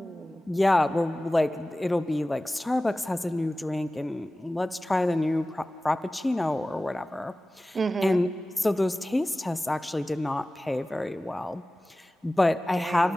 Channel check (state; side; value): normal; both; correlation 0.97